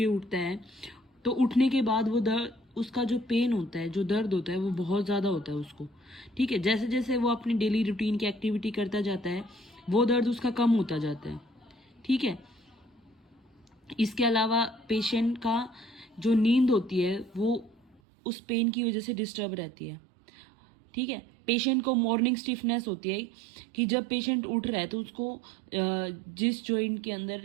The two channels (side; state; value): left; drops out; at 18.0 s